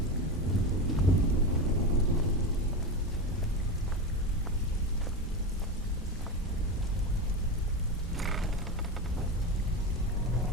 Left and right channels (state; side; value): normal; both; correlation 0.20